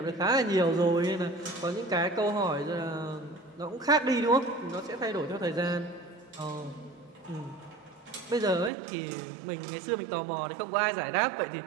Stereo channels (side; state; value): left; drops out; at 8.7 s